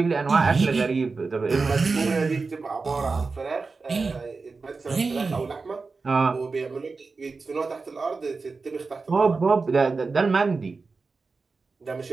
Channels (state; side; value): quieter; left; 4.2 dB